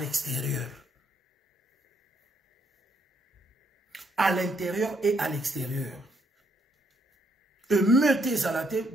À l'intérieur et à l'extérieur. Meutez à la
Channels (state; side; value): normal; both; correlation 0.73